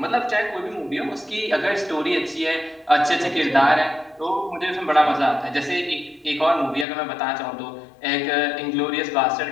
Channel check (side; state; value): right; drops out; at 6.9 s